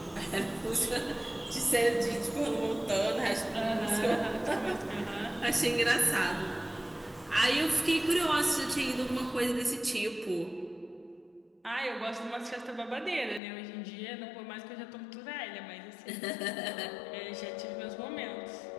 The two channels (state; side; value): drops out; right; at 13.4 s